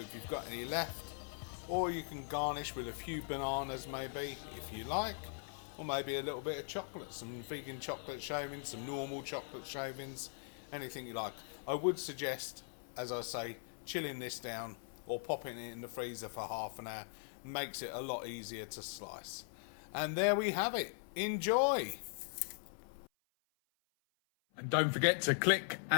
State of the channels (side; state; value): right; silent; 51 dB below the other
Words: you've got any left, or you can garnish with a few bananas maybe if you like, or maybe a little bit of chocolate, some vegan chocolate shavings, some normal chocolate shavings, anything you like. I would suggest, as I say, chilling this down or popping it in the freezer for half an hour makes it a lot easier to slice. And there we have it. Enjoy! And don't forget to click